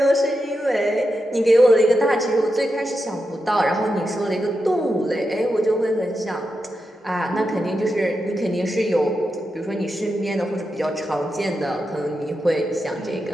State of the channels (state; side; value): normal; both; correlation 0.88